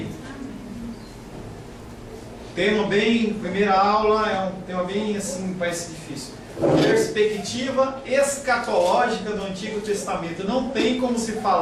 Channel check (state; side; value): identical; both; correlation 1.00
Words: Primeira aula é um tema bem assim, parece difícil. Perspectiva escatológica do Antigo Testamento. Não tem como se